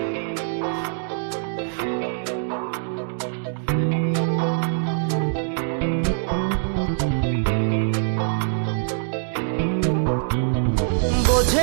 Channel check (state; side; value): silent; left; 63 dB below the other